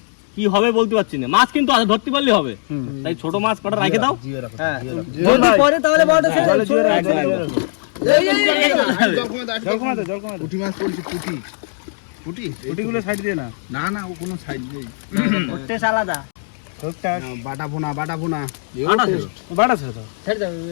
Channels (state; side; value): silent; right; digital silence